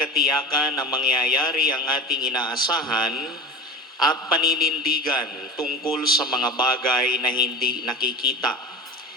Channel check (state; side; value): normal; both; correlation 0.30